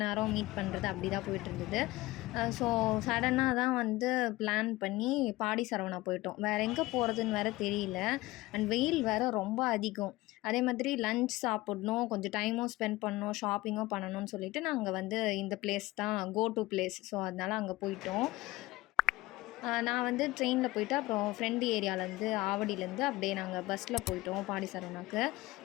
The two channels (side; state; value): right; quieter; 19.2 dB